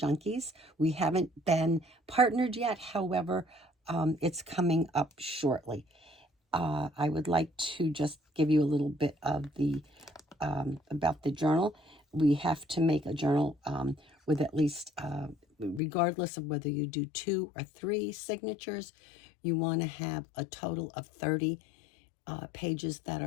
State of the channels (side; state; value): right; drops out; at 15.8 s